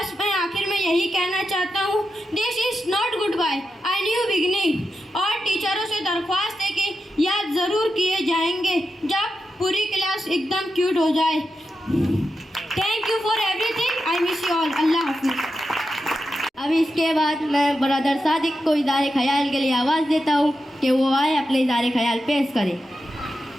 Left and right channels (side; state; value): both; normal; correlation 0.88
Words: मैं आखिर में यही कहना चाहता हूँ, this is not goodbye, I new beginning. और टीचरों से दरख्वास्त है कि याद ज़रूर किए जाएंगे जब पूरी क्लास एकदम क्यूट हो जाए। Thank you for everything, I miss you all. अल्लाह हाफिज़। अब इसके बाद मैं ब्रदर सादिक को इज़हार ख्याल के लिए आवाज़ देता हूँ कि वो आए अपने इज़हार ख्याल पेश करें।